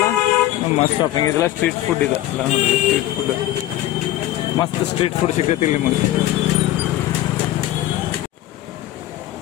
ಮಸ್ತ್ ಶಾಪಿಂಗ್ ಇದೆಲ್ಲ ಸ್ಟ್ರೀಟ್ ಫುಡ್ ಇದೆ ಎಲ್ಲ ನೋಡ್ರಿ ಸ್ಟ್ರೀಟ್ ಫುಡ್ ಮಸ್ತ್ ಸ್ಟ್ರೀಟ್ ಫುಡ್ ಸಿಗ್ತೈತಿ ನಿಮಗೆ.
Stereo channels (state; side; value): quieter; right; 14.5 dB